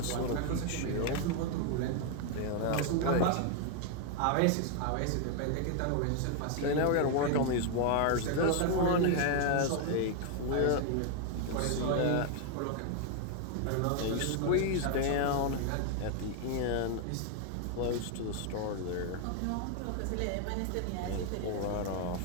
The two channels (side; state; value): both; different; correlation 0.00